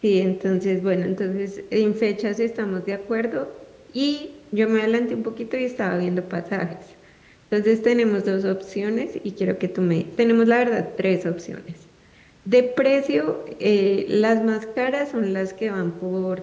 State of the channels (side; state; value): both; identical; correlation 1.00